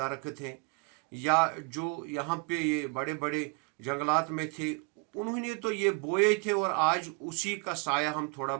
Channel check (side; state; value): left; quieter; 31.1 dB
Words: हैं या जो यहाँ पे ये बड़े बड़े जंगलात में थे, उन्होंने तो ये बोए थे और आज उसी का साया हम थोड़ा